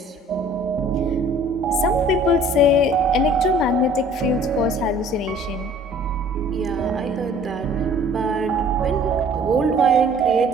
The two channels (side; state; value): both; normal; correlation 0.52